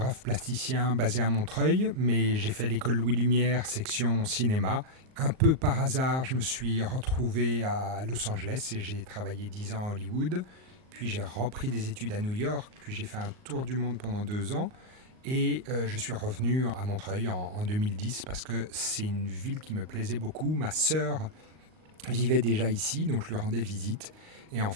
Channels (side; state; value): left; late; 38 ms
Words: plasticien basé à Montreuil, mais j'ai fait l'école Louis Lumière, section cinéma. Un peu par hasard, je me suis retrouvé à Los Angeles et j'ai travaillé 10 ans à Hollywood. Puis j'ai repris des études à New York, puis j'ai fait un tour du monde pendant 2 ans. Et je suis revenu à Montreuil en 2010 parce que c'est une ville qui me plaisait beaucoup. Ma sœur vivait déjà ici, donc je lui rendais visite. Et en